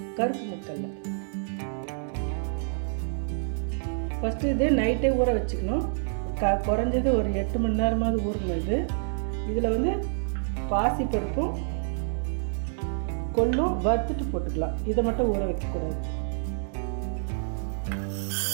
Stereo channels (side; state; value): left; silent; 60 dB below the other